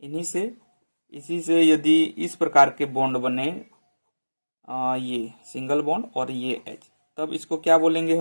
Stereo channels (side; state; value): both; inverted; correlation -1.00